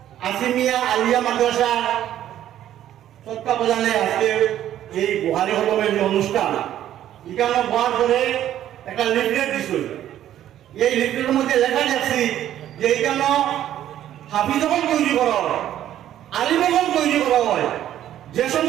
আছিমিয়া আলিয়া মাদ্রাসা তত্ত্বাবধানে আজকে এই বুহারি হলমের যে অনুষ্ঠান এখানে হওয়ার পরে একটা লিফলেট দিছিল। এই লিফলেটের মধ্যে লেখা যাচ্ছে যে এখানে হাফিজগণ তৈরি করা হয়, আলিমগণ তৈরি করা হয়। যে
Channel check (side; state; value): left; quieter; 11.8 dB